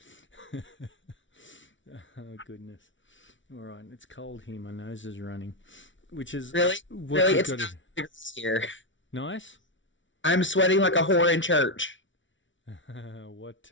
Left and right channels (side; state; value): right; late; 0.56 ms